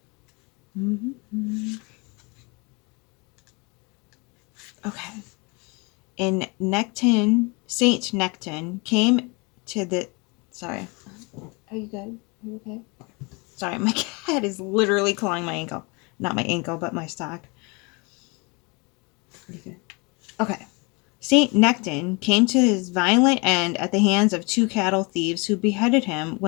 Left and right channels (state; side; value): quieter; right; 29.3 dB